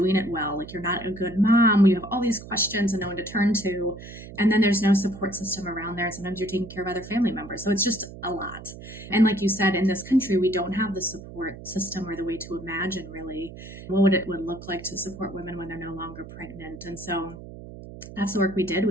it well, like you're not a good mom. You have all these questions and no one to turn to. And then there's no support system around there. Sometimes you're taking care of other family members. So it's just a lot. And like you said, in this country, we don't have the support system or the way to imagine really what it would look like to support women when they're no longer pregnant. And so that's the work we did.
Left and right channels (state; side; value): noise; right; hum, 14 dB below the sound